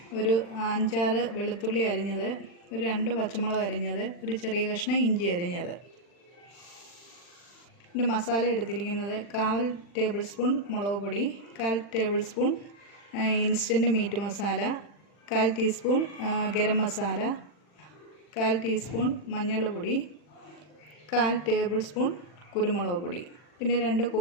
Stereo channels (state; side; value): late; right; 40 ms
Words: ഒരു 5-6 വെളുത്തുള്ളി അരിഞ്ഞത്, ഒരു 2 പച്ചമുളക് അരിഞ്ഞത്, ഒരു ചെറിയ കഷ്ണം ഇഞ്ചി അരിഞ്ഞത്. പിന്നെ മസാല എടുത്തിരിക്കുന്നത് 1/4 ടേബിൾ സ്പൂൺ മുളക് പൊടി, 1/4 table spoon instant meat masala, 1/4 teaspoon garam masala, 1/4 teaspoon മഞ്ഞൾപ്പൊടി, 1/4 ടേബിൾ സ്പൂൺ കുരുമുളക് പൊടി. പിന്നെ 2